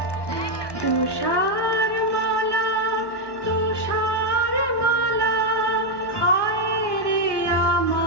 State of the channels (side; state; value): right; late; 1.1 ms